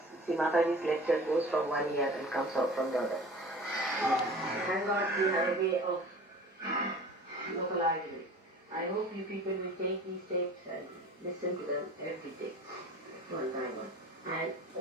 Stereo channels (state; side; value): normal; both; correlation 0.41